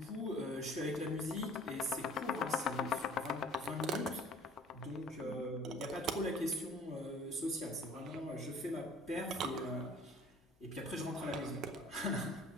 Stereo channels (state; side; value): normal; both; correlation 0.51